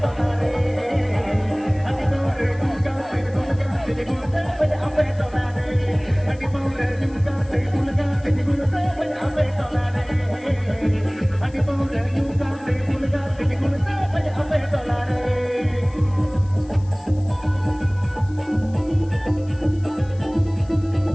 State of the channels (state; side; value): noise; left; hiss, 28 dB below the sound